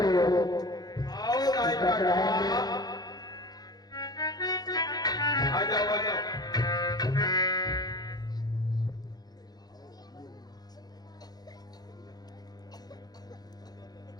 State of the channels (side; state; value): right; late; 0.19 ms